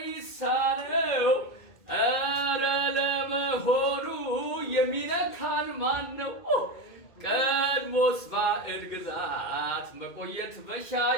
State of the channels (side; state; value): right; late; 2.2 ms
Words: ኧረ ለመሆኑ የሚነካን ማን ነው? ቀድሞስ ባዕድ ግዛት መቆየት